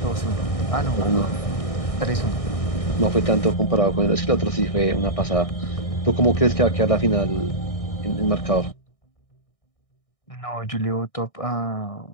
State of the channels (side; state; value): right; late; 1.6 ms